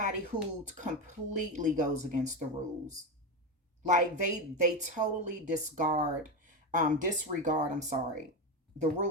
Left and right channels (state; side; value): normal; both; correlation 0.15